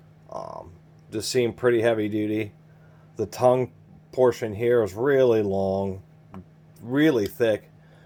Just seem pretty heavy duty. The tongue portion here is really long, really thick,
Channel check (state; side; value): identical; both; correlation 1.00